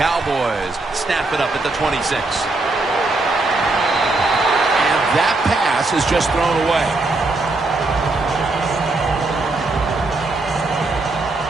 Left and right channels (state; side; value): quieter; left; 3.2 dB